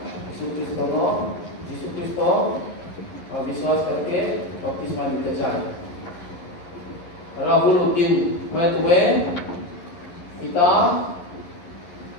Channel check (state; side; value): late; right; 11 ms